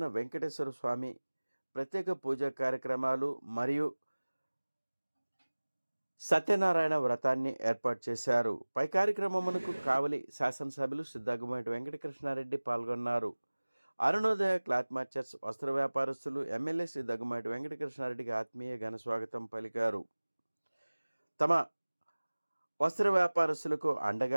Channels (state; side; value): inverted; both; correlation -1.00